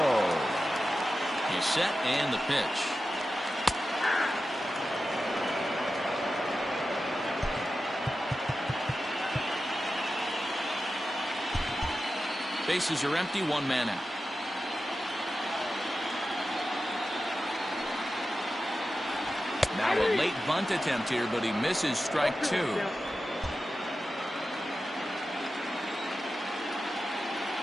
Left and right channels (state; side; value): normal; both; correlation 0.92